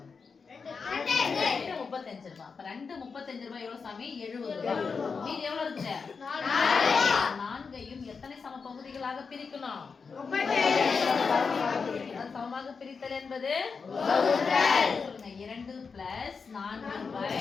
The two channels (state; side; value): quieter; right; 5.2 dB